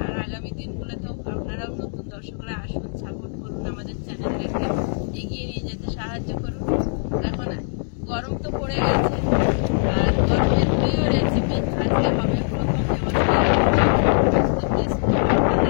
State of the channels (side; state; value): right; silent; digital silence